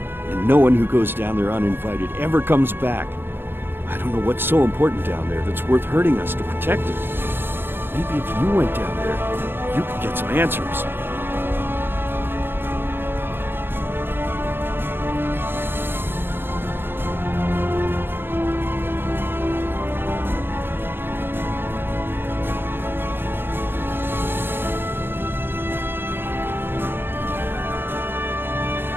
and no one who goes down there uninvited ever comes back. I don't know what's so important down there that's worth hurting us to protect it. Maybe if you went down there, you could get some answers.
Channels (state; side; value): late; left; 0.10 ms